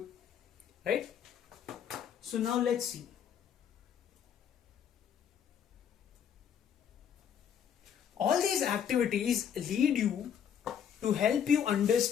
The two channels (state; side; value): quieter; right; 8.4 dB